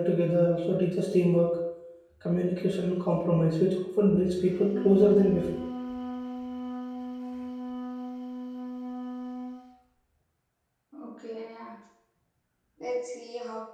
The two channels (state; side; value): identical; both; correlation 1.00